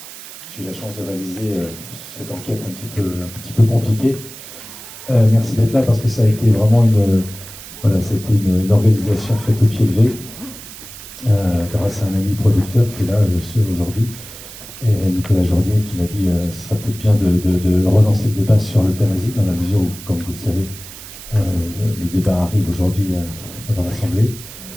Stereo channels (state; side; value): noise; right; hiss, 15 dB below the sound